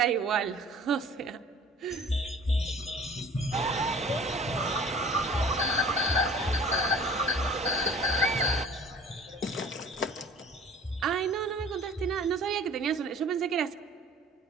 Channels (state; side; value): normal; both; correlation 0.48